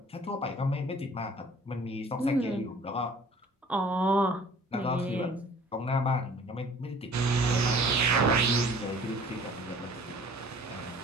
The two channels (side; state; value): both; normal; correlation 0.51